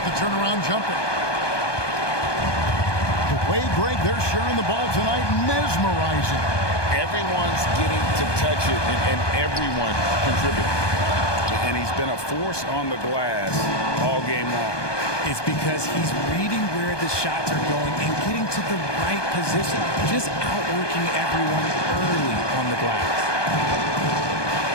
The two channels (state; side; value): late; right; 1.2 ms